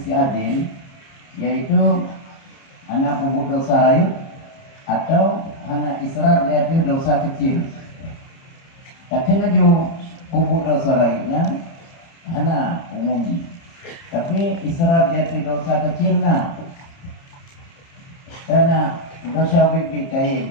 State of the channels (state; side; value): late; right; 30 ms